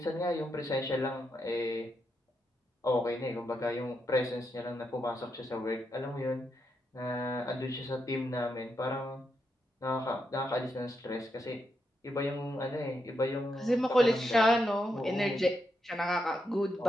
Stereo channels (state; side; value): normal; both; correlation 0.83